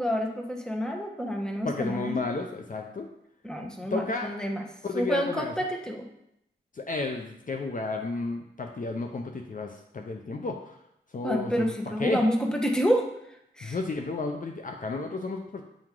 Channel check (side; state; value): both; normal; correlation 0.74